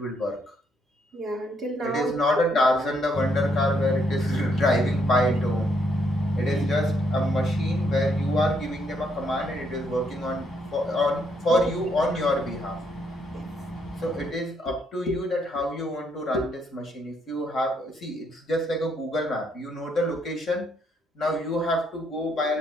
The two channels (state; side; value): normal; both; correlation 0.73